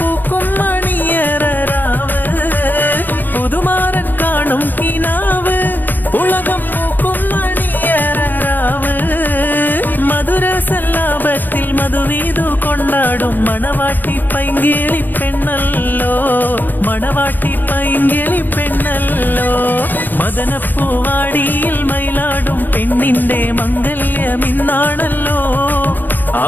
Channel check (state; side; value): late; right; 0.091 ms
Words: മണിയറാവ് പുതുമാരൻ കാണും കിനാവ് ഉലകം പൂക്കും മണിയറാവ് മധുര സല്ലാപത്തിൽ മധുവീതു കൊണ്ടാടും മണവാട്ടി പൈങ്കിളി പെണ്ണല്ലോ മണവാട്ടി പൈങ്കിളി പെണ്ണല്ലോ മദനപ്പൂവാടിയിൽ മയിലാടും പെണ്ണിന്റെ മംഗല്യമിന്നാണല്ലോ